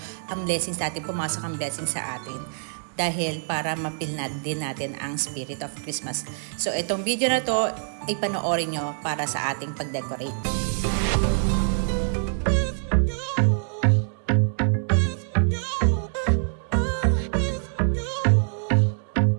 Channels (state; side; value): silent; left; digital silence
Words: ang blessings natin, pumasok ang blessings sa atin. Dahil para mapilnad din natin ang spirit of Christmas. So, itong video na to, ipanoorin nyo para sa ating pag-decorate.